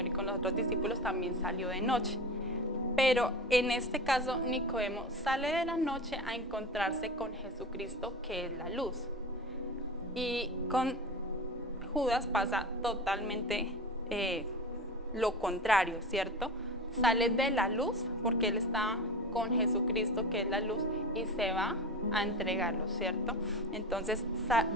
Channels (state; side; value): normal; both; correlation 0.29